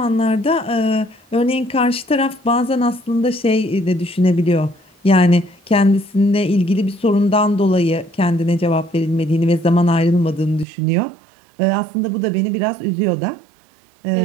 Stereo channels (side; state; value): left; drops out; at 10.7 s